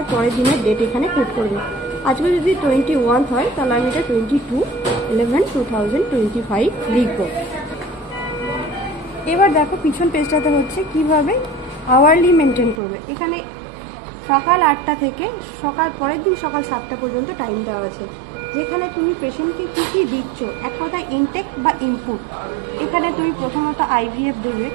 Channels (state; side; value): drops out; left; at 12.8 s